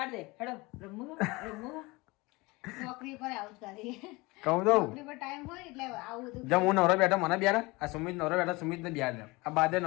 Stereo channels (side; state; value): right; quieter; 23.7 dB